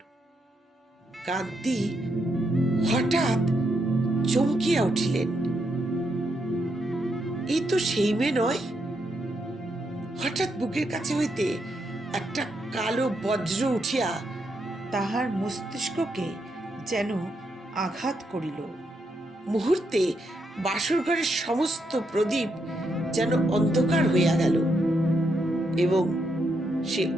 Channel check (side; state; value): both; normal; correlation 0.80